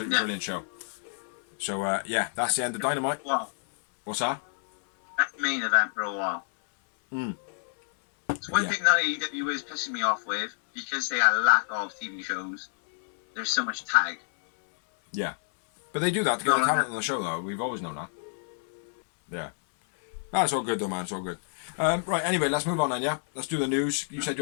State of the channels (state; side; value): silent; right; 59 dB below the other